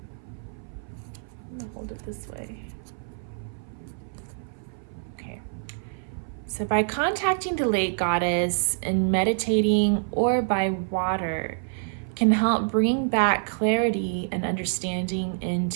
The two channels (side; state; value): left; silent; 58 dB below the other